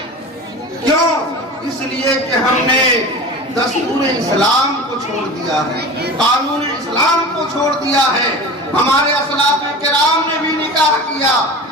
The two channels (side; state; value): both; normal; correlation 0.34